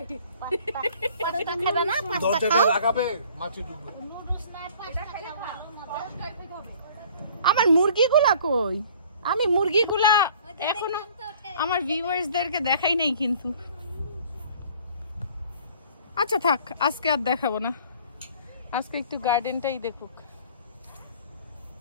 দরজাটা লাগাবে, মাছি ঢুকবে। আমার মুরগিগুলা কই? আমি মুরগিগুলা এখনো আমার ভিউয়ার্সদেরকে দেখাই নাই কিন্তু। আচ্ছা থাক, আজকে আর দেখাবো না, আজকে একটু গার্ডেনটাই দেখুক।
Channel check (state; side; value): inverted; both; correlation -0.52